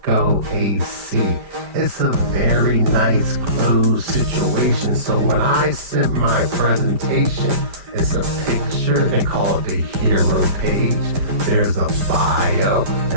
AC. It's a very nice closed situation. So when I sent my presentation, it's a picture, they call it the hero page. There's a bio,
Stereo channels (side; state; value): left; late; 5.1 ms